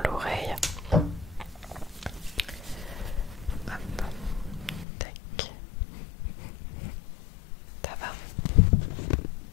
l'oreille. Hop. Tac. Ça va.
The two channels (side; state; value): right; drops out; at 4.9 s